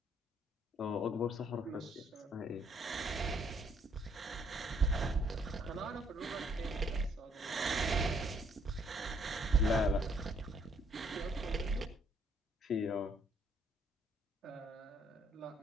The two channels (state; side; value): normal; both; correlation 0.67